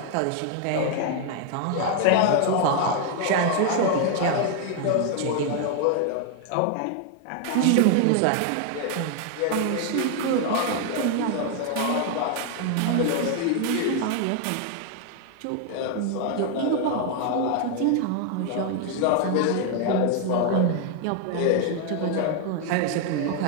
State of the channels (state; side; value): different; both; correlation 0.00